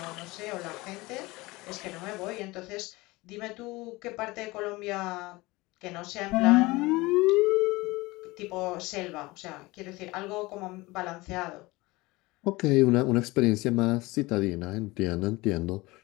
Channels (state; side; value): quieter; right; 21.8 dB